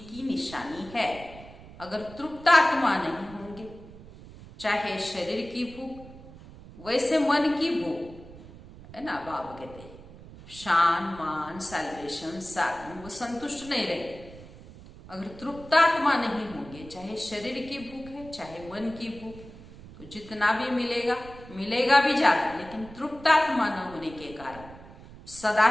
निशानी है। अगर तृप्त आत्मा नहीं होंगे, चाहे शरीर की भूख, वैसे मन की भूख है ना, बाबा कहते हैं शान, मान, सैल्वेशन, साधन, वो संतुष्ट नहीं रहेंगे। अगर तृप्त आत्मा नहीं होंगे, चाहे शरीर की भूख है चाहे मन की भूख, तो जितना भी मिलेगा, मिलेगा भी ज्यादा, लेकिन तृप्त आत्मा न होने के कारण सदा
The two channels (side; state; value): right; noise; rumble, 18 dB below the sound